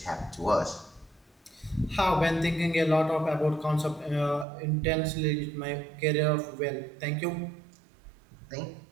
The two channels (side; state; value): left; drops out; at 4.5 s